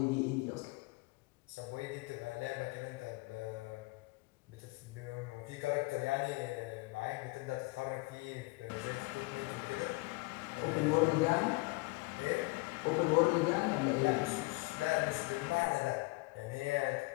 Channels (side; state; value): right; quieter; 24.6 dB